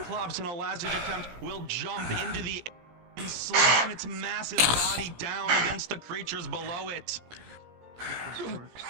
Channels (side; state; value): left; late; 17 ms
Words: in a last-ditch attempt will jump into the air and slam its massive body down against the creatures below it.